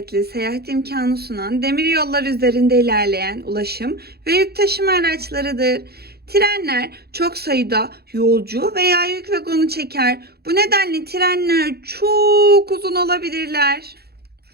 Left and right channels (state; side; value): late; left; 0.46 ms